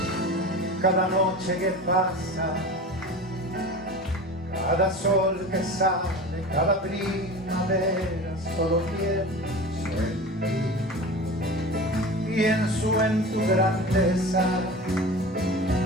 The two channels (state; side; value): normal; both; correlation 0.33